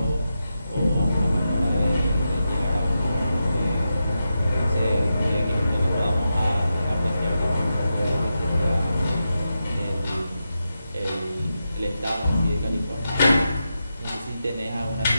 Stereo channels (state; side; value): inverted; both; correlation -0.88